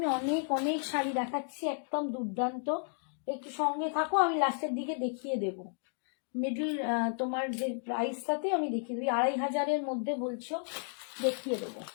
অনেক অনেক শাড়ি দেখাচ্ছি, একদম দুর্দান্ত, একটু সঙ্গে থাকো, আমি লাস্টের দিকে দেখিয়ে দেব। মিডল তোমার যে প্রাইসটাতে আমি দেখিয়ে দেবো, 2500-এর মধ্যে বলছো, দেখিয়ে দেবো।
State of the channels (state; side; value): silent; right; 56 dB below the other